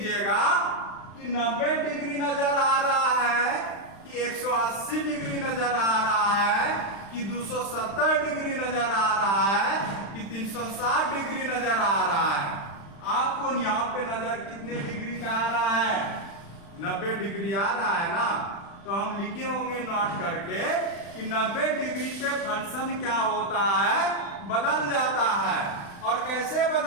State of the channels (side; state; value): right; late; 35 ms